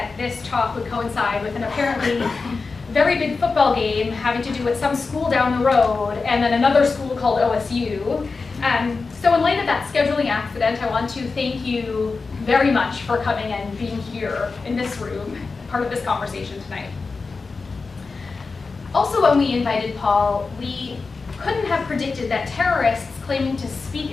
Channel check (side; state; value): right; quieter; 4.3 dB